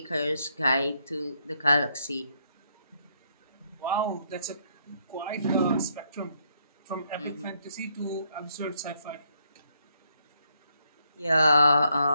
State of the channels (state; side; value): inverted; both; correlation -0.74